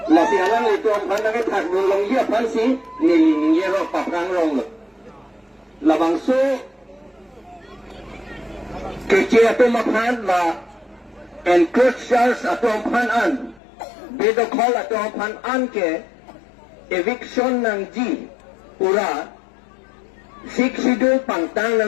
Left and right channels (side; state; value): right; drops out; at 13.6 s